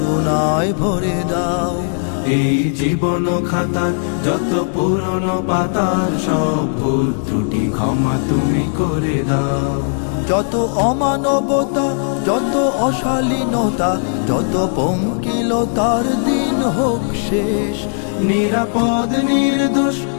ভরে দাও। এই জীবন খাতার যত পুরনো পাতার সব ভুল ত্রুটি ক্ষমা তুমি করে দাও। যত অমানবতা, যত অশালীনতা, যত পঙ্কিলতার দিন হোক শেষ। নিরাপদ নির্দোষ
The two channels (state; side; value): silent; right; digital silence